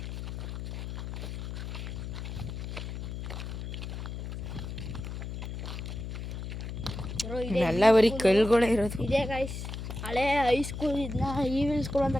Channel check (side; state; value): left; noise; hum, 6 dB below the sound